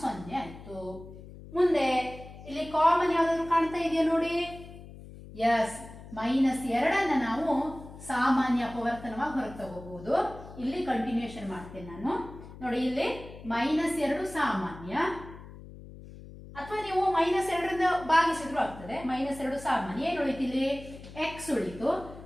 0 ಆಯ್ತು. ಮುಂದೆ ಇಲ್ಲಿ ಕಾಮನ್ ಯಾವ್ದಾದ್ರು ಕಾಣ್ತಾ ಇದೆಯಾ ನೋಡಿ? ಎಸ್, -2 ನಾವು ಸಾಮಾನ್ಯ ಅಪವರ್ತನವಾಗಿ ಹೊರಗೆ ತಗೋಬಹುದು. ಇಲ್ಲಿ ಕಂಟಿನ್ಯೂಷನ್ ಮಾಡ್ತೇನೆ ನಾನು. ನೋಡಿ, ಇಲ್ಲಿ -2 ಸಾಮಾನ್ಯ, ಅಥವಾ ನೀವು -2ರಿಂದ ಭಾಗಿಸಿದ್ರು ಆಗ್ತದೆ. -2 ಸಾಮಾನ್ಯ. ಏನು ಉಳಿತು ಇಲ್ಲಿ? x ಉಳಿತು.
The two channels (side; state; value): left; noise; hum, 16 dB below the sound